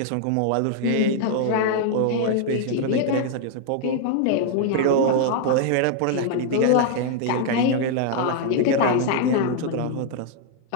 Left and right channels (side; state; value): both; different; correlation 0.00